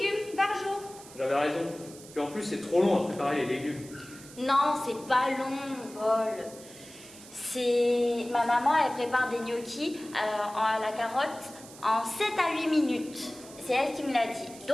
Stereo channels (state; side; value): noise; right; hiss, 18 dB below the sound